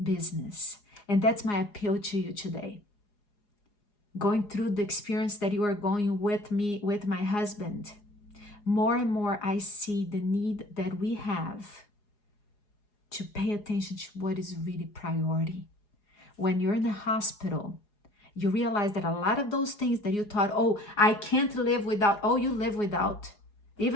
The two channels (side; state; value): right; late; 4.8 ms